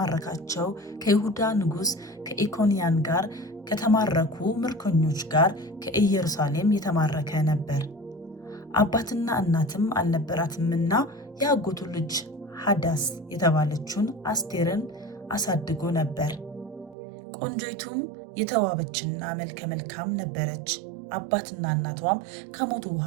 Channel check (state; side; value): drops out; left; at 16.9 s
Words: ከይሁዳ ንጉሥ ከኢኮንያን ጋር ከተማረኩ ምርኮኞች ጋር ከኢየሩሳሌም የተማረከ ነበር። አባትና እናትም አልነበራትምና የአጎቱ ልጅ ሐዳስ የተባለችውን አስቴርን አሳድጎ ነበር። ቆንጆይቱም የተዋበችና መልከ መልካም ነበረች። አባትና እናቷም ከሞቱ